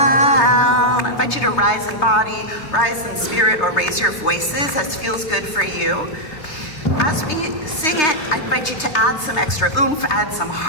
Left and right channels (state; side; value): late; right; 3.3 ms